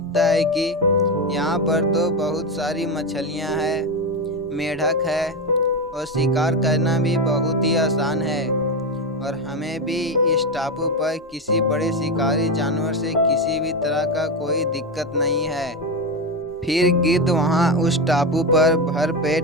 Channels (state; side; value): normal; both; correlation 0.14